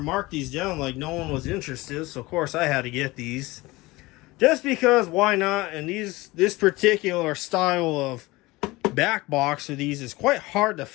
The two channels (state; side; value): quieter; right; 21.0 dB